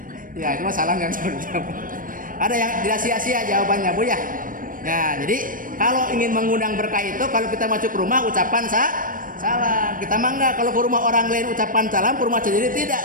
Ya, itu salam yang jawab. Ada yang tidak sia-sia jawabannya, Bu ya. Ya, jadi kalau ingin mengundang berkah itu, kalau kita masuk ke rumah ucapan salam. Kita mangga kalau ke rumah orang lain ucapan salam, ke rumah sendiri tidak,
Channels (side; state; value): left; late; 0.40 ms